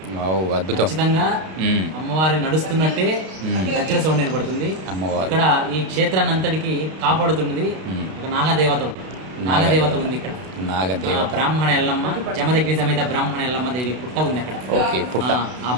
అద్భుతం. ఖచ్చితంగా అమ్మవారి నడుస్తున్నట్టే గజ్జల సౌండ్ వినపడుతుంది. ఇక్కడ ఈ క్షేత్రాన్ని అంతటికి కాపాడుతున్నది ఒక నాగదేవత ఉంది. ఇక్కడ బ్రాహ్మణ ఎల్లమ్మ, జమదగ్ని సమేత బ్రాహ్మణ ఎల్లమ్మ దేవి పుట్ట ఉంది అక్కడ. ఆ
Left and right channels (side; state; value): left; late; 32 ms